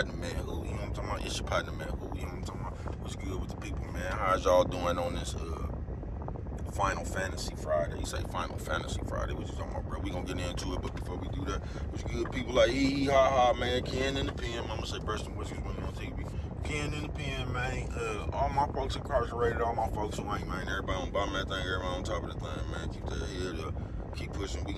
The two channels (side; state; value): both; identical; correlation 1.00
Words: man. Who? You know what I'm talking about? It's your partner, man. Who? You know what I'm talking about? What's good with the people, man? How's y'all doing on this Final Fantasy Friday? You say Final Fantasy Friday? What you talking about, bro? We gonna get into it, but before we do that, what's good, people like hee ha ha, man? Ken in the pen. Mama say Preston Whiskers when on TV. Ken in the pen, man. All my folks incarcerated, all my folks who ain't, man. Everybody on bottom of that thing, everybody on top of the thing, man. Keep that head up. Keep pushing. We